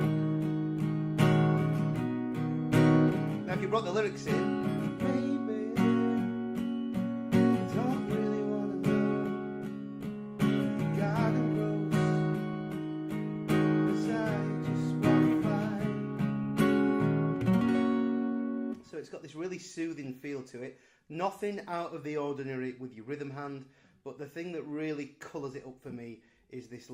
Now if you brought the lyrics in, it's got this really soothing feel to it. Nothing out of the ordinary with your rhythm hand, but the thing that really colours it up for me is this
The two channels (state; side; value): identical; both; correlation 1.00